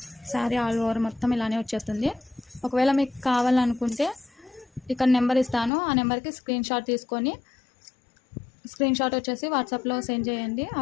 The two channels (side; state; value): right; drops out; at 5.7 s